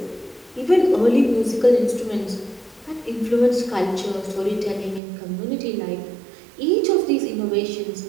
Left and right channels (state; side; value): drops out; left; at 5.0 s